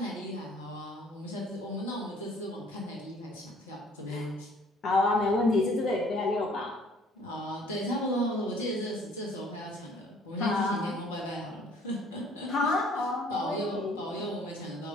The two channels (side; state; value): both; normal; correlation 0.56